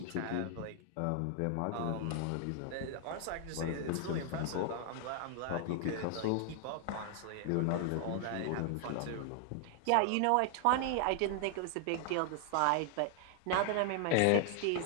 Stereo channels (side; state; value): both; different; correlation 0.00